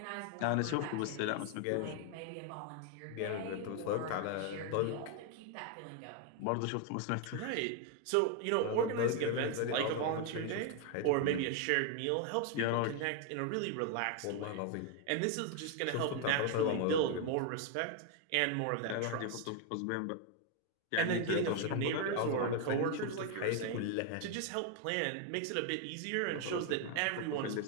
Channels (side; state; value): both; different; correlation 0.01